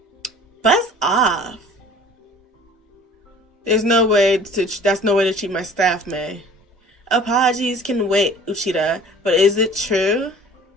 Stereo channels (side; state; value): both; normal; correlation 0.47